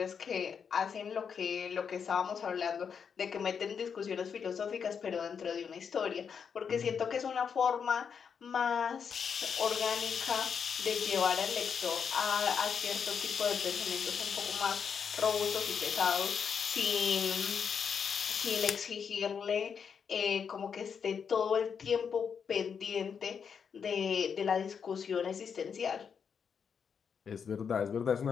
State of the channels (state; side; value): quieter; right; 6.8 dB